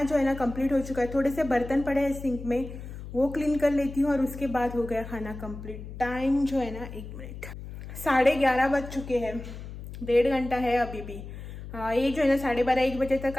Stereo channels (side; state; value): left; noise; hum, 11 dB below the sound